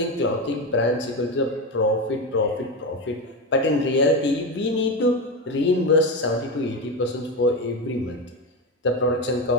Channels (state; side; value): normal; both; correlation 0.16